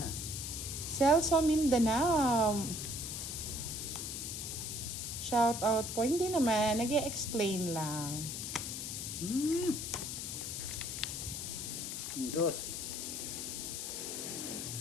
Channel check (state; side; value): noise; left; hiss, 5 dB below the sound